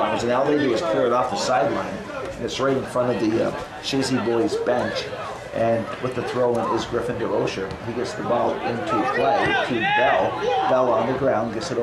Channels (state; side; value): identical; both; correlation 1.00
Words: and all they do is clear it off the sideline, and it's right in front of the Chazy boys bench. And with the throw-in is Griffin DeRocha. He gets the ball into play to Bell. Bell on the ground gets it